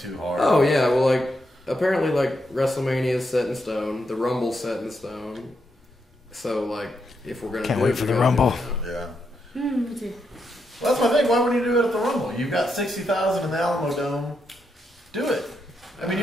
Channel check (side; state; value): both; normal; correlation 0.82